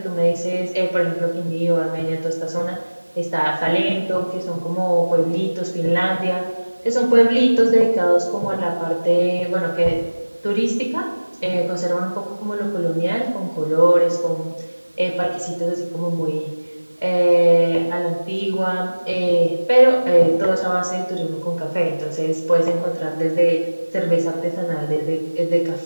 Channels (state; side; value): inverted; both; correlation -1.00